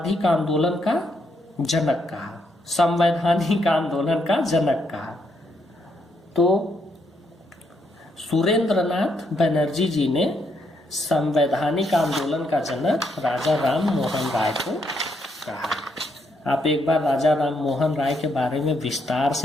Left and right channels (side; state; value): both; normal; correlation 0.76